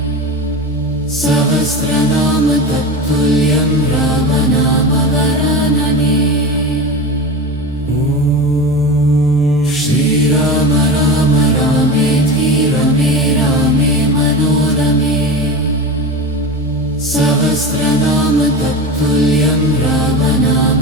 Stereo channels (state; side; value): normal; both; correlation 0.27